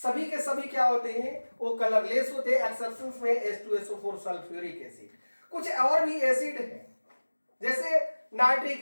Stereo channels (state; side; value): inverted; both; correlation -1.00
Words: के सभी क्या होते हैं, वो कलरलेस होते हैं, एक्सेप्शंस में H2SO4 सल्फ्यूरिक एसिड। कुछ और भी एसिड है, जैसे